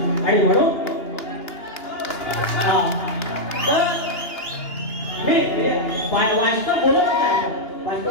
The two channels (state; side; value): late; right; 2.9 ms